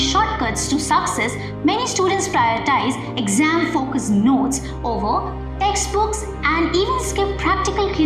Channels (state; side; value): identical; both; correlation 1.00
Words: to success, many students prioritize exam-focused notes over textbooks and even skip practical